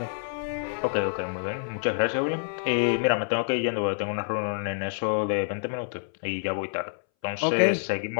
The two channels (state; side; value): silent; right; 60 dB below the other